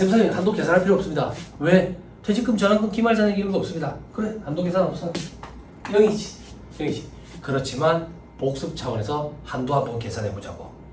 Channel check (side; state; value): both; identical; correlation 1.00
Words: 한도 계산할 필요 없습니다. 왜? 퇴직금 전환금 기말잔액 이런 거 없습니다. 그래 한도 계산 없어. 0이지. 그렇지만 복습 차원에서 한도 한번 계산해 보자고.